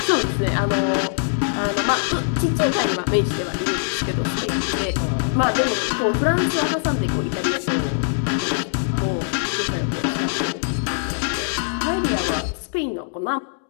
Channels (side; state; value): right; silent; digital silence